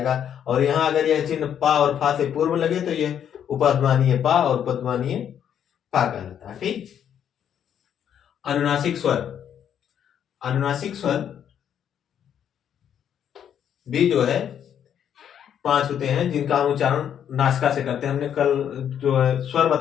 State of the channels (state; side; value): quieter; right; 9.1 dB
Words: और यहाँ अगर यह चिन्ह पा और फा से पूर्व लगे तो यह उपधमानीय पा और उपधमानीय फा कहलाता है। ठीक, अनुनासिक स्वर, अनुनासिक स्वर भी जो है 5 होते हैं, जिनका हम उच्चारण नासिका से करते हैं। हमने कल जो है स्वर